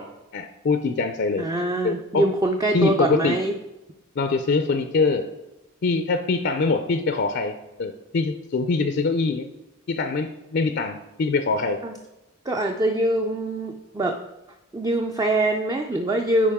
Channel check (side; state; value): both; normal; correlation 0.36